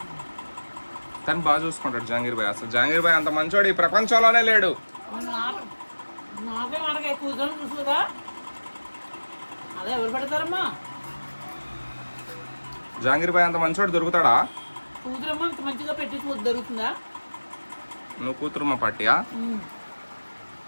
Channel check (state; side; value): inverted; both; correlation -1.00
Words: తను బాగా చూసుకుంటాడు జంగీర్ భాయ్. అసలు జంగీర్ భాయ్ అంత మంచోడు ఈ ప్రపంచంలోనే లేడు. జంగీర్ భాయ్ అంత మంచోడు దొరుకుతాడా? నువ్వు కూతురుమ్మ పార్టీయా?